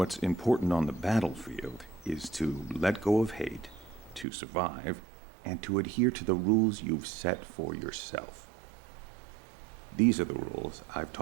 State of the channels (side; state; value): left; drops out; at 4.2 s